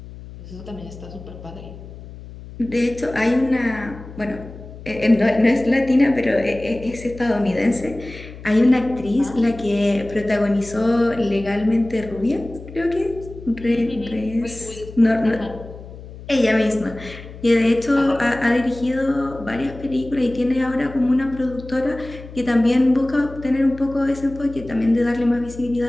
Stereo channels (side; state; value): left; noise; hum, 15 dB below the sound